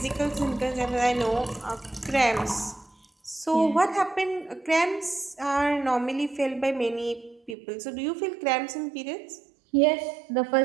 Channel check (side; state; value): left; drops out; at 7.6 s